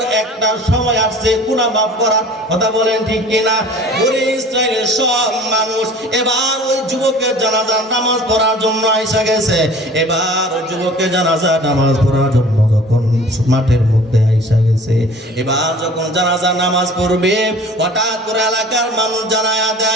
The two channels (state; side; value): normal; both; correlation 0.45